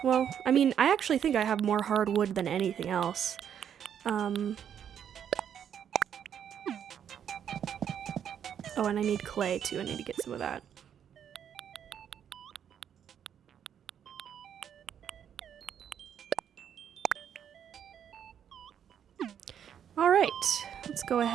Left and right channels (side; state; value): left; quieter; 8.8 dB